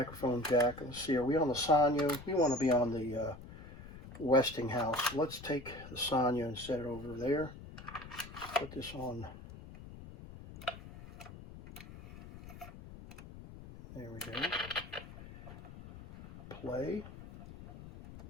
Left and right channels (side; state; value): left; noise; rumble, 15 dB below the sound